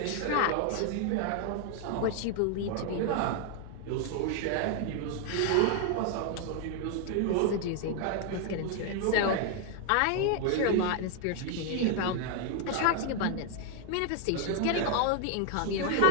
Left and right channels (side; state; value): both; different; correlation 0.00